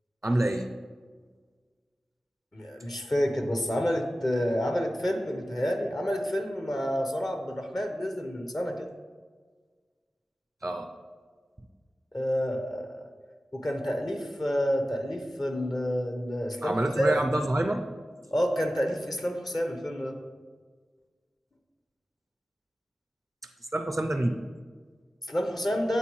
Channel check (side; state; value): both; normal; correlation 0.94